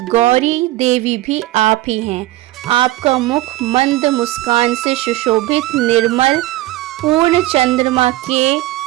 गौरी देवी भी आप ही हैं। आपका मुख मंद मुस्कान से सुशोभित निर्मल पूर्ण चंद्रमा के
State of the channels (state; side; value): quieter; left; 17.3 dB